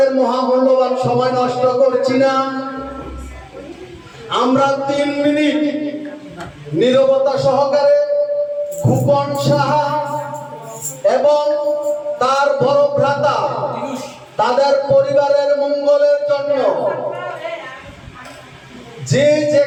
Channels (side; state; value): both; identical; correlation 1.00